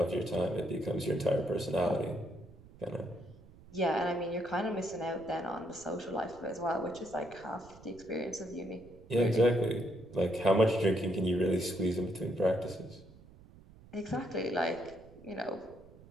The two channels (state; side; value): noise; right; rumble, 22 dB below the sound